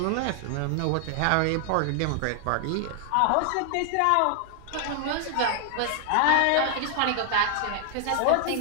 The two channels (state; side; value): different; both; correlation 0.00